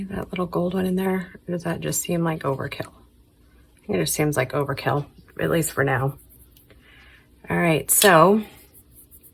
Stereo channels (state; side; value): identical; both; correlation 1.00